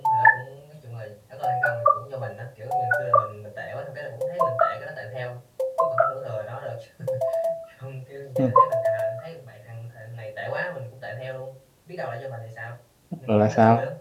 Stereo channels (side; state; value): both; identical; correlation 1.00